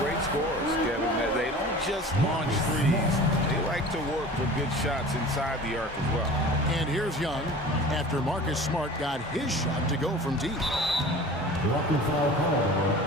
scores, Kevin. They don't just launch threes. They like to work for good shots inside the arc as well. And here's Young after Marcus Smart got his shot to go from deep. Walking foul call,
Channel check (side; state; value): both; normal; correlation 0.40